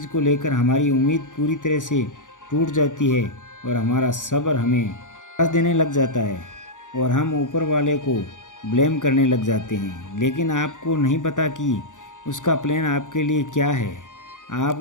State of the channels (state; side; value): late; right; 0.87 ms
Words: को लेकर हमारी उम्मीद पूरी तरह से टूट जाती है और हमारा सब्र हमें निराश देने लग जाता है और हम ऊपर वाले को ब्लेम करने लग जाते हैं। लेकिन आपको नहीं पता कि उसका प्लान आपके लिए क्या है। आप